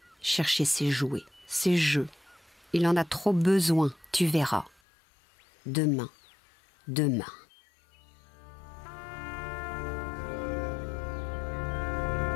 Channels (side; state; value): right; drops out; at 4.8 s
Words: chercher ses jouets, ses jeux. Il en a trop besoin, tu verras. Demain, demain.